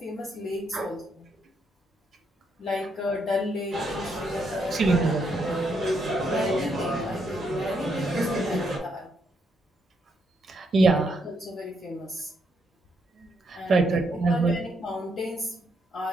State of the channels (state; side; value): normal; both; correlation 0.76